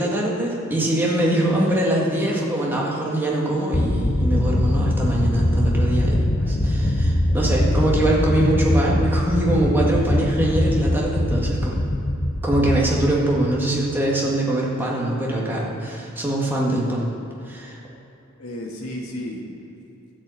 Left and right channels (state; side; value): normal; both; correlation 0.76